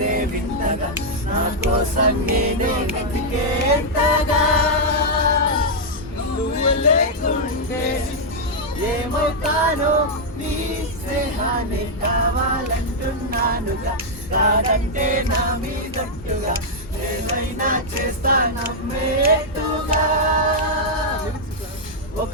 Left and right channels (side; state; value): both; normal; correlation -0.04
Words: వింతగా, నా కోసం నేనే వెతికేంతగా. నువ్వు లేకుంటే ఏమవుతానో, నీ స్నేహాన్ని కావాలంటున్నానుగా. కాదంటే నా మీదట్టుగా ఏమైనా చేస్తా నమ్మేట్టుగా.